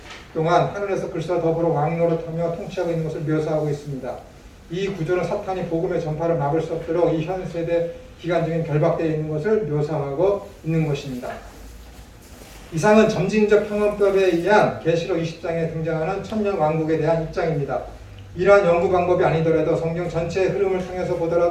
동안 하늘에서 그리스도와 더불어 왕노릇하며 통치하고 있는 것을 묘사하고 있습니다. 이 구절은 사탄이 복음의 전파를 막을 수 없도록 이 현 세대 기간적인 결박되어 있는 것을 묘사하고 있는 것입니다. 이상은 점진적 평원법에 의한 계시록 20장에 등장하는 천년 왕국에 대한 입장입니다. 이러한 연구 방법이 아니더라도 성경 전체의 흐름을 통해서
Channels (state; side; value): identical; both; correlation 1.00